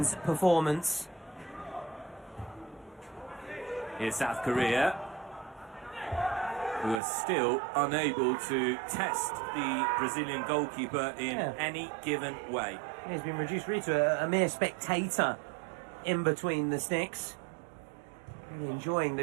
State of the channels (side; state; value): left; drops out; at 7.0 s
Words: performance. Here's South Korea, who are still unable to test the Brazilian goalkeeper in Yeah. any given way. He's been reduced really to a mere spectator in between the sticks. Really enjoying